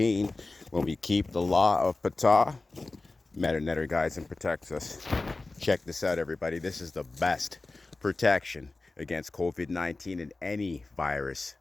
When we keep the law of Ptah, Metu Neter guides and protects us. Check this out, everybody. This is the best protection against COVID-19 and any virus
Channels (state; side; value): quieter; right; 3.3 dB